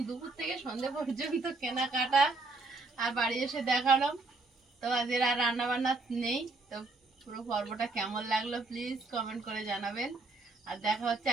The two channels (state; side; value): quieter; left; 3.5 dB